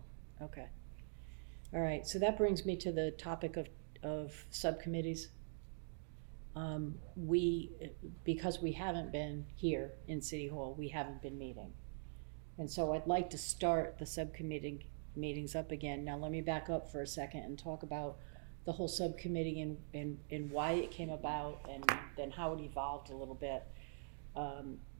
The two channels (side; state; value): left; silent; digital silence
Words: Okay. All right, so that brings me to the topic of subcommittees. Because we haven't been here in City Hall, we haven't been meeting. And so I'd like to start the subcommittee meetings up again. Now, let me back up for a second and talk about the whole subcommittee and why it came about, and then how it evolved a little bit.